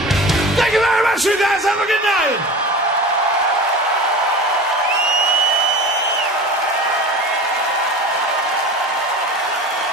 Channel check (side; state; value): both; normal; correlation 0.34